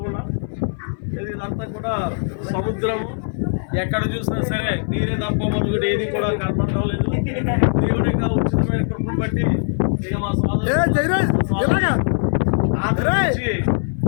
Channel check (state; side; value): silent; right; 59 dB below the other